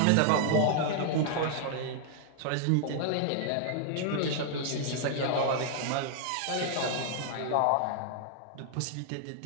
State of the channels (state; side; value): different; both; correlation 0.00